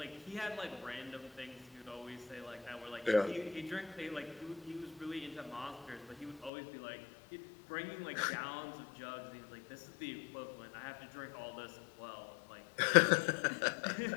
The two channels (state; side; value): drops out; right; at 6.5 s